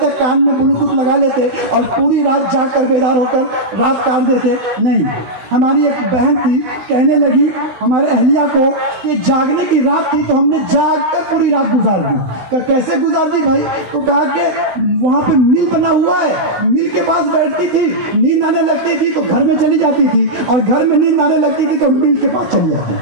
کان میں بلوٹوتھ لگا لیتے اور پوری رات جاگ کر بیدار ہو کر رات کاٹ دیتے۔ نہیں، ہماری ایک بہن تھی کہنے لگی ہمارے اہلیہ کو کہ جاگنے کی رات تھی تو ہم نے جاگ کر پوری رات گزار دی۔ کہ کیسے گزار دی بھائی؟ تو کہا کہ وہاں پہ مل بنا ہوا ہے، مل کے پاس بیٹھتی تھی، نیند آنے لگتی تھی تو گھر میں چلی جاتی تھی، اور گھر میں نیند آنے لگتی تھی تو مل کے پاس چلی جاتی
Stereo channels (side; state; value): left; late; 16 ms